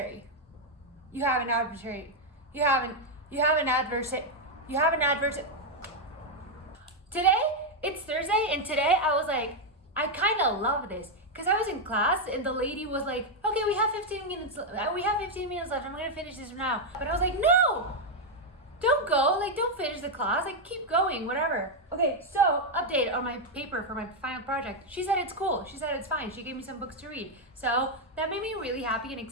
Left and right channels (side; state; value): both; normal; correlation 0.01